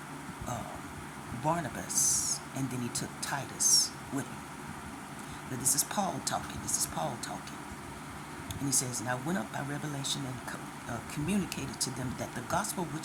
Barnabas, and then he took Titus with him. Now this is Paul talking. And he says, And I went up by revelation and communicated to them that the gospel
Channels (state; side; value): identical; both; correlation 1.00